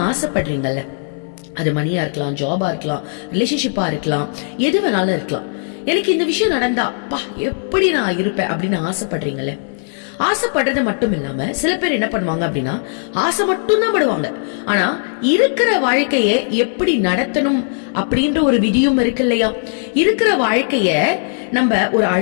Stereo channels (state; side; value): silent; right; 59 dB below the other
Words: ஆசைப்படுறீங்கல்ல. அது மணியா இருக்கலாம், ஜாபா இருக்கலாம், ரிலேஷன்ஷிப்பா இருக்கலாம், எது வேணாலும் இருக்கலாம். எனக்கு இந்த விஷயம் நடந்தா எப்படி நான் இருப்பேன் அப்படின்னு ஆசைப்படுறீங்கல்ல. ஆசைப்படுறது மட்டும் இல்லாம சில பேர் என்ன பண்ணுவாங்க அப்படின்னா, ஆசை மட்டும் தான் படுவாங்க. ஆனா இருக்கிற வாழ்க்கைய எப்படி நடத்தணும் அப்படின்ற ஒரு விதியும் இருக்கு இல்லையா? இருக்கிற வாழ்க்கைய நம்ம ஒரு